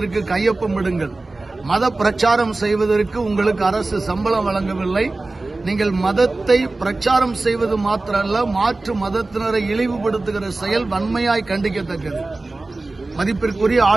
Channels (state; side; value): quieter; left; 3.2 dB